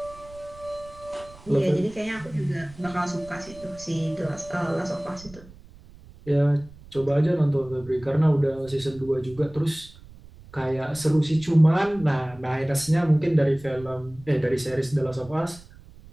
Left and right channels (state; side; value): noise; right; rumble, 21 dB below the sound